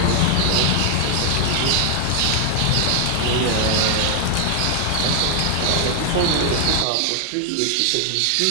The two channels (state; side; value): different; both; correlation 0.00